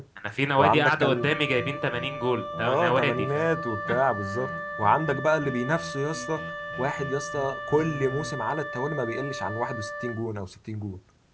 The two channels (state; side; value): identical; both; correlation 1.00